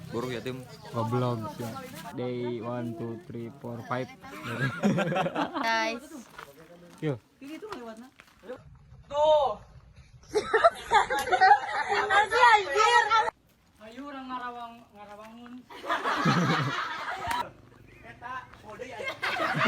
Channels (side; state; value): both; identical; correlation 1.00